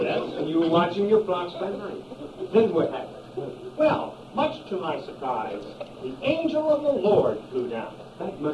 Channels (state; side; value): identical; both; correlation 1.00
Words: Yes. and you were watching your flocks by night. Then what happened? Well, much to my surprise, the angel of the Lord flew down. That